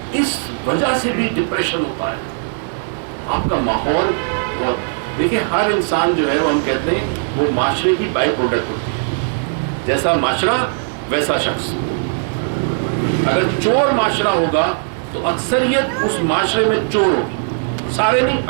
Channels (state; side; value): silent; left; digital silence